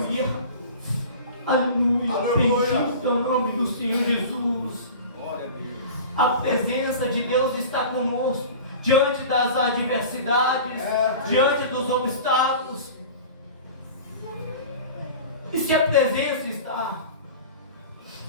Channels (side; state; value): both; inverted; correlation -0.37